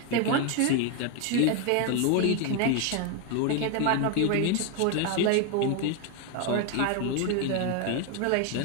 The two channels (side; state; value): both; different; correlation 0.01